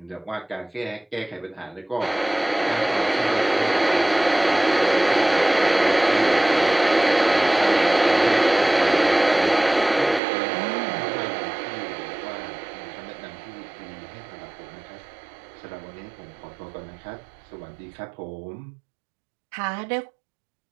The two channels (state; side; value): drops out; left; at 10.2 s